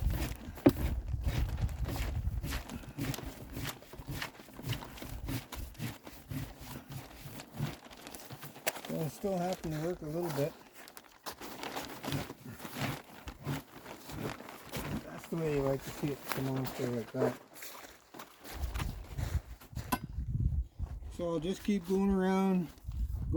so I'm still having to work a little bit. That's the way you like to see it come off there like that. So I'll just keep going around,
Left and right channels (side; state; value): both; identical; correlation 1.00